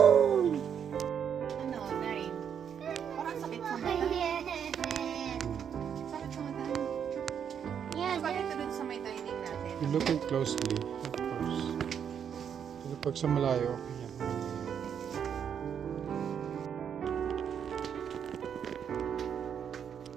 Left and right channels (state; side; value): quieter; left; 8.1 dB